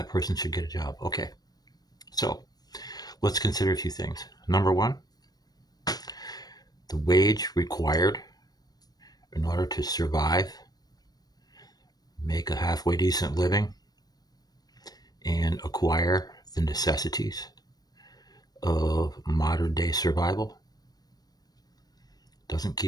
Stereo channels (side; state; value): right; late; 0.19 ms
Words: person should get a job. Okay. So let's consider a few things. Number one, the wage required in order to survive, make a halfway decent living, and acquire the necessities of modern day survival doesn't